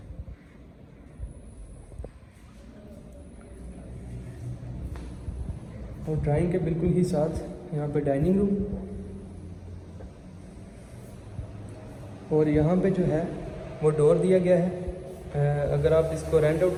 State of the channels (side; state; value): both; identical; correlation 1.00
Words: और ड्राइंग के बिल्कुल ही साथ यहाँ पे डाइनिंग रूम। और यहाँ पे जो है वो डोर दिया गया है। अगर आप इसको रेंट आउट